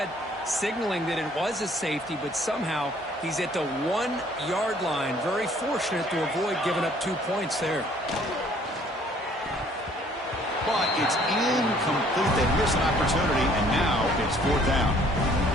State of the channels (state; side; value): normal; both; correlation 0.59